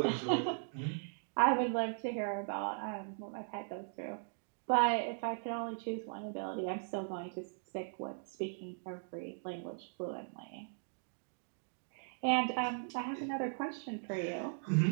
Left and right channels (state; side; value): silent; left; digital silence